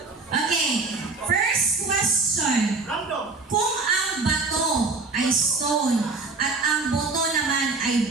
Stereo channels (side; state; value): left; quieter; 3.9 dB